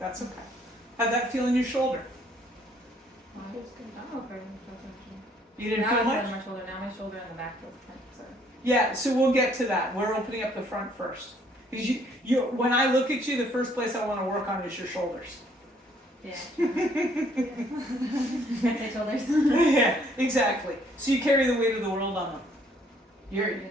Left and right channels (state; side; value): normal; both; correlation 0.64